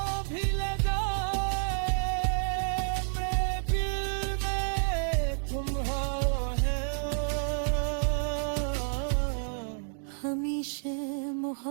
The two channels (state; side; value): silent; left; digital silence